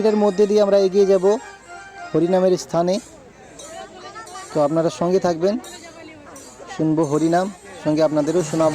মধ্যে দিয়ে আমরা এগিয়ে যাব হরিনামের স্থানে। তো আপনারা সঙ্গে থাকবেন, শুনবো হরিনাম, সঙ্গে আপনাদেরও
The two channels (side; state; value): both; identical; correlation 1.00